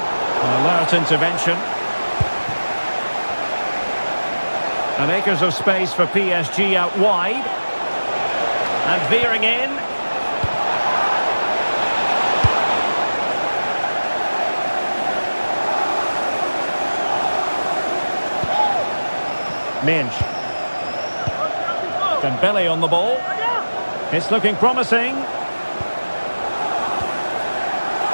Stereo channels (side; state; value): both; inverted; correlation -1.00